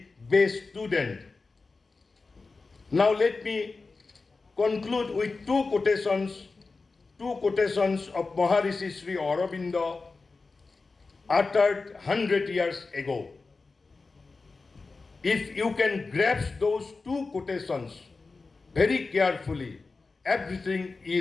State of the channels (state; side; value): quieter; right; 4.0 dB